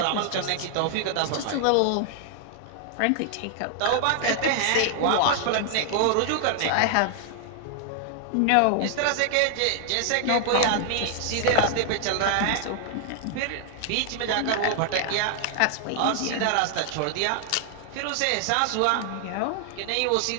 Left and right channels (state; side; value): different; both; correlation 0.00